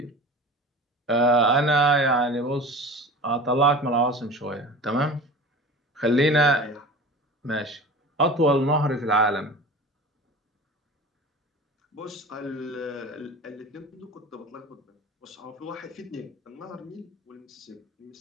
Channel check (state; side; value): normal; both; correlation 0.37